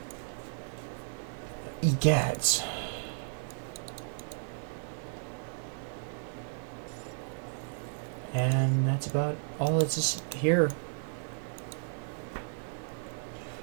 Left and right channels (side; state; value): left; silent; 55 dB below the other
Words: Egads. And that's about all that's just here.